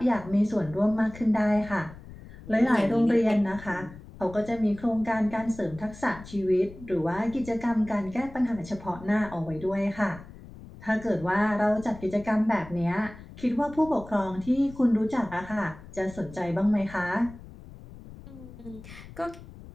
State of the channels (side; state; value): left; noise; rumble, 17 dB below the sound